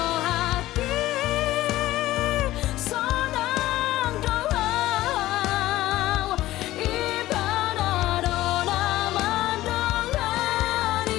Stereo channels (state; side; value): quieter; right; 15.9 dB